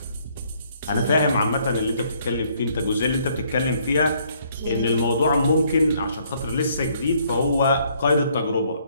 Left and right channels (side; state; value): both; inverted; correlation -0.66